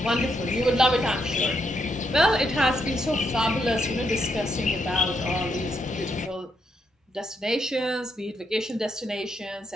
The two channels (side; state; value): both; normal; correlation 0.78